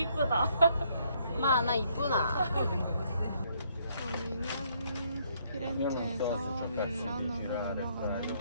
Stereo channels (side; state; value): both; inverted; correlation -0.69